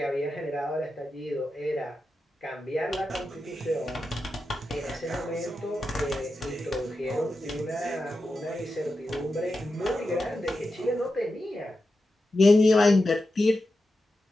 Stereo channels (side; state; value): both; normal; correlation 0.90